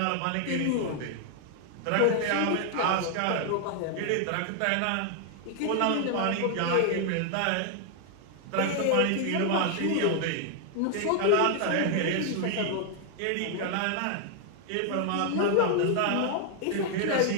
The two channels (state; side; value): different; both; correlation 0.00